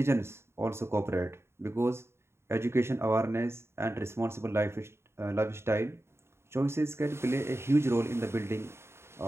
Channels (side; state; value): left; late; 0.12 ms